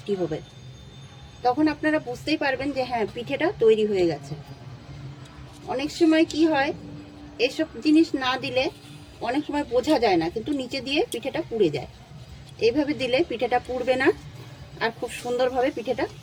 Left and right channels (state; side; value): identical; both; correlation 1.00